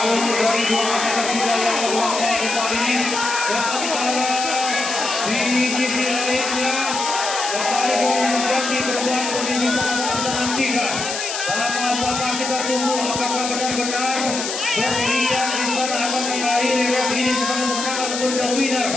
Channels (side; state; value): left; noise; hiss, 4 dB below the sound